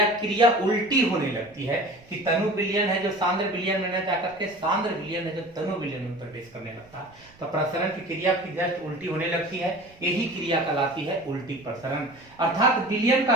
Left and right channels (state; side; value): noise; right; rumble, 26 dB below the sound